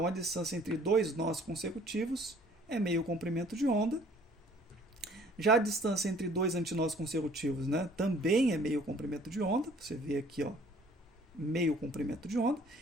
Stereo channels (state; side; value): normal; both; correlation 0.56